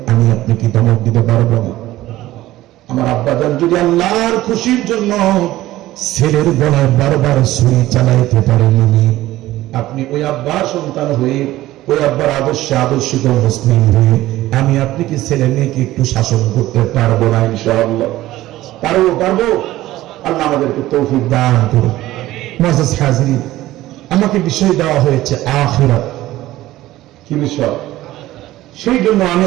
আমি আপনি কি ধমক দিতে পারবো না? আমার আব্বাজান যদি আল্লাহর খুশির জন্য ছেলের গলায় বারবার ছুরি চালাইতে পারেননি, আপনি ওই আব্বার সন্তান হয়ে ওই আব্বার আদর্শে আদর্শিত মুসলিম হয়ে আমি আপনি কি ছেলে মেয়েকে একটু শাসন করতে পারবো না? ইনশাআল্লাহ পারবো। আল্লাহ আমাদেরকে তৌফিক দান করুন। মুআজ্জাজ হাজিরিন, আমাকে বিষয় দেওয়া হয়েছে আখিরাত। কি বিষয়? সেই জন্য আমি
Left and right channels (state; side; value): quieter; left; 15.9 dB